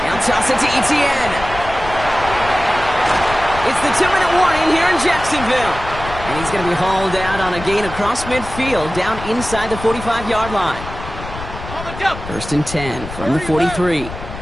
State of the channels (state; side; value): noise; left; rumble, 11 dB below the sound